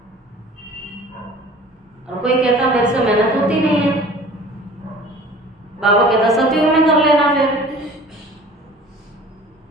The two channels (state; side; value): normal; both; correlation 0.45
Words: और कोई कहता मेरे से मेहनत होती नहीं है, बाबा कहता सतयुग में कर लेना, फिर